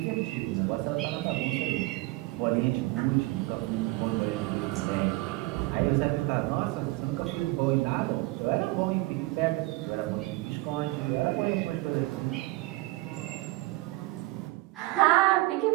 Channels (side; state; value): left; quieter; 20.4 dB